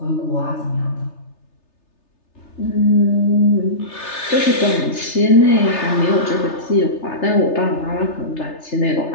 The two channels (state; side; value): late; right; 3.3 ms